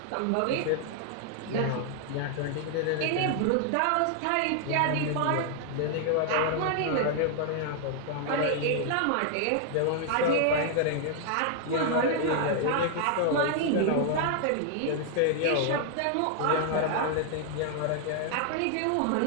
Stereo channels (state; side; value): different; both; correlation 0.00